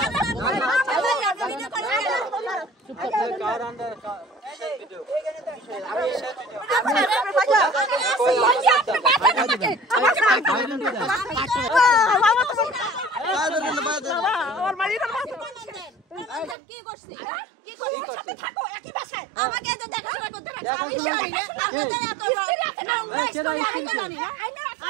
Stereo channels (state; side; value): drops out; left; at 16.6 s